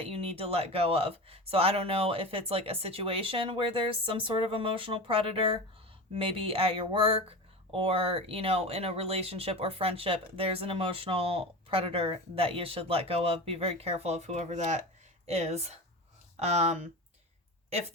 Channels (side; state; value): both; normal; correlation 0.27